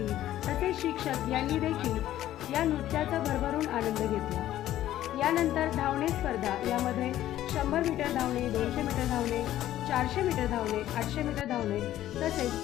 तसेच शिक्षक यांनी देखील या नृत्याचा भरभरून आनंद घेतला। यानंतर धावणे स्पर्धा, यामध्ये 100 मीटर धावणे, 200 मीटर धावणे, 400 मीटर धावणे, 800 मीटर धावणे तसेच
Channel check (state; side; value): quieter; right; 13.2 dB